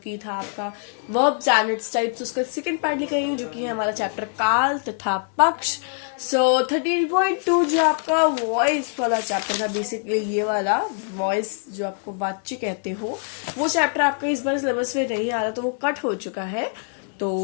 था आपका वर्ब्स एंड इट्स टाइप्स, उसका सेकेंड पार्ट लेकर आई हूँ जो कि है हमारा चैप्टर काल तथा पक्ष. सो 13.2 जो आपका वॉइस वाला चैप्टर था, बेसिकली ये वाला वॉइस जो आपको वाच्य कहते हो, वो चैप्टर आपका इस बार सिलेबस में नहीं आ रहा, तो वो कट हो चुका है.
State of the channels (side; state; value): right; silent; 62 dB below the other